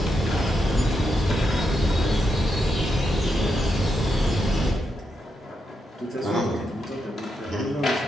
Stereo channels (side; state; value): both; normal; correlation 0.84